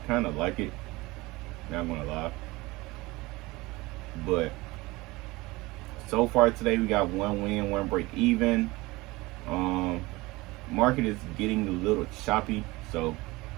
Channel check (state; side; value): quieter; left; 21.6 dB